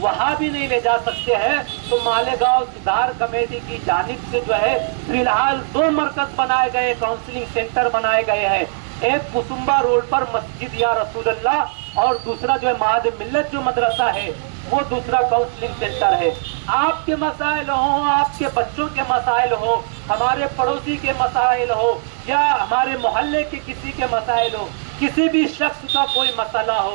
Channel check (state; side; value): silent; left; digital silence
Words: بھی نہیں لے جا سکتے ہیں تو مالیگاؤں سدھار کمیٹی کی جانب سے جو ہے فی الحال 2 مرکز بنائے گئے، کاؤنسلنگ سینٹر بنائے گئے ہیں۔ ایک کسمبا روڈ پر مسجد یا رسول اللہ، اور دوسرا جو ہے معہد ملت جو مدرسہ ہے وہ دوسرا کاؤنسلنگ سینٹر ہے۔ آپ کے مسائل ہوں، آپ کے بچوں کے مسائل ہو، ہمارے پڑوسی کے مسائل ہو، یا ہمارے محلے کے کسی کے مسائل ہو، کسی بھی شخص کا کوئی مسئلہ